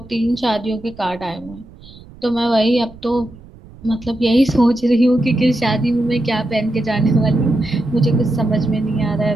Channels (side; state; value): right; noise; rumble, 21 dB below the sound